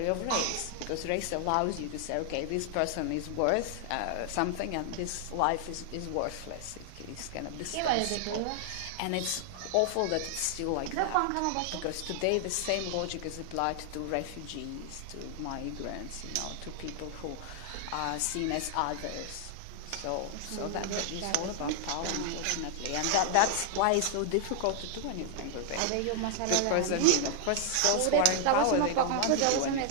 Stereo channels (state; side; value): different; both; correlation 0.00